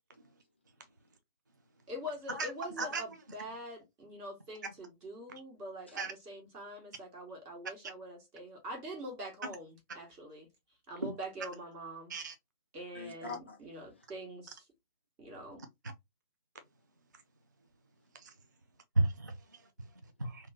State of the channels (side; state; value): both; inverted; correlation -0.39